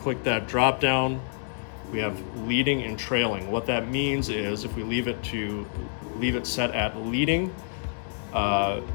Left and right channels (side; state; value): right; silent; digital silence